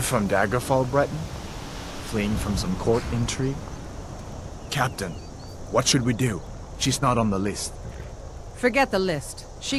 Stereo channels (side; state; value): both; identical; correlation 1.00